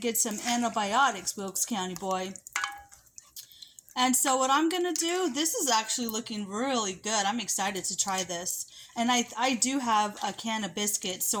get some antibiotics, Wilkes County Boy. And so what I'm going to do, this is actually looking really good. I'm excited to try this. And I do have a can of biscuits,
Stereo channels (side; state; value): both; identical; correlation 1.00